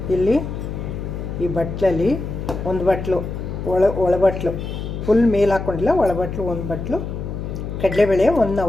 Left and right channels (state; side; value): noise; left; hum, 6 dB below the sound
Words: ಇಲ್ಲಿ ಈ ಬಟ್ಲಲ್ಲಿ ಒಂದು ಬಟ್ಲು ಒಳಬಟ್ಲು ಫುಲ್ ಮೇಲೆ ಹಾಕ್ಕೊಂಡಿಲ್ಲ, ಒಳಬಟ್ಲು ಒಂದು ಬಟ್ಲು ಕಡಲೆಬೇಳೆ 1